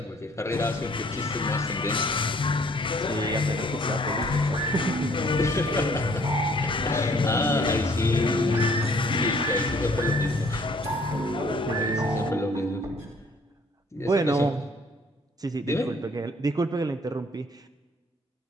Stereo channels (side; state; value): both; normal; correlation 0.59